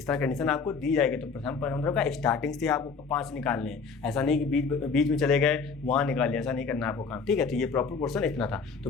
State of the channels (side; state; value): right; quieter; 5.1 dB